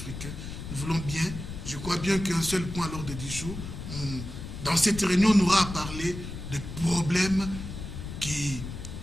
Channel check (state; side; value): noise; left; rumble, 8 dB below the sound